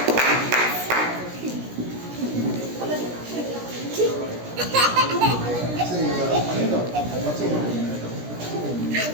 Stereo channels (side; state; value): left; late; 17 ms